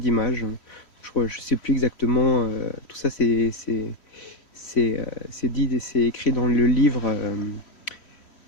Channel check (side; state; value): right; late; 3.1 ms